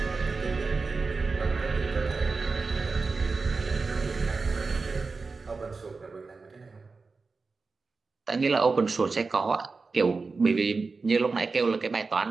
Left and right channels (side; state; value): left; quieter; 4.2 dB